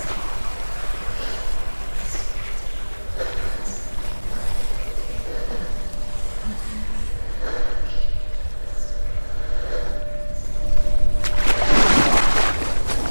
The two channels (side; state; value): both; inverted; correlation -1.00